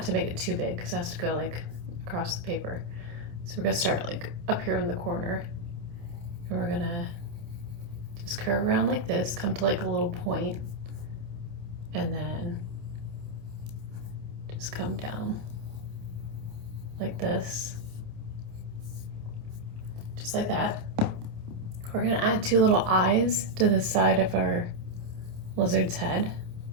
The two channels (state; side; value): late; left; 27 ms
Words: to make it too big because it has to go like across the paper. So we're going to start like up here in the corner. And we're going to just curve around like this, come to like a little point, and then just come down like this. Just like that. We're gonna add two little eyes to the side of our lizard's head.